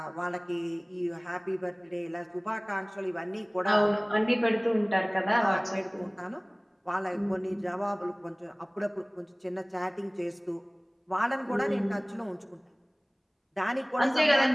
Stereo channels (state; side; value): identical; both; correlation 1.00